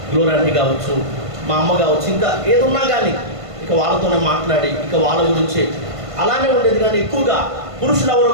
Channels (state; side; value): late; left; 1.5 ms